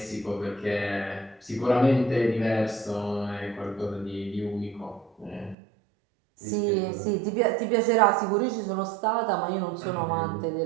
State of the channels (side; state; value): left; drops out; at 5.6 s